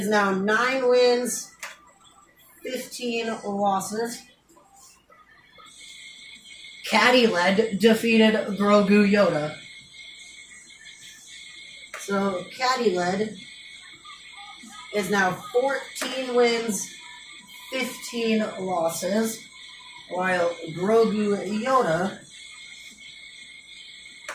now 9 wins, 15 losses. Caddy Led defeated Grogu Yoda. So Caddy Led is now 14 wins, 15 losses, while Grogu Yoda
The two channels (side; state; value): both; identical; correlation 1.00